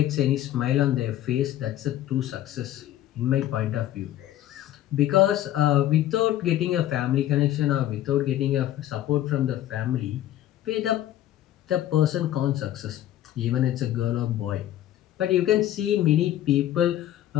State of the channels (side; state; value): right; quieter; 12.9 dB